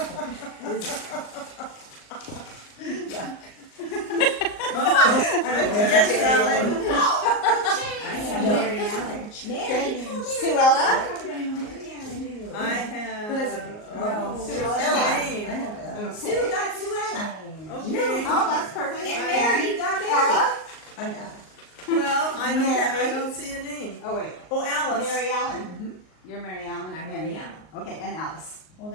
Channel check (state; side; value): late; right; 38 ms